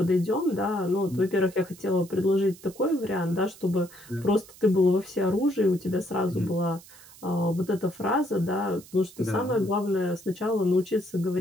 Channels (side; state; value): right; noise; hiss, 21 dB below the sound